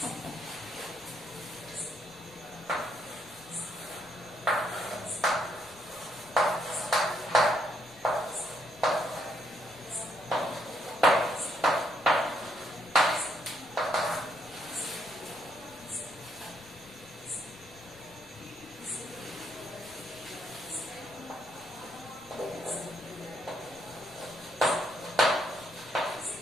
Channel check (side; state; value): left; noise; rumble, 26 dB below the sound